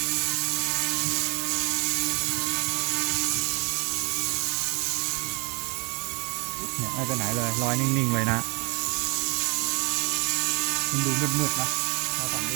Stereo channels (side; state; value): left; quieter; 26.3 dB